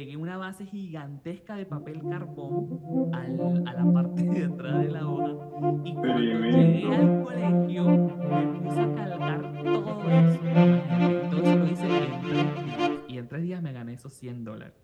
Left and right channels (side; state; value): both; identical; correlation 1.00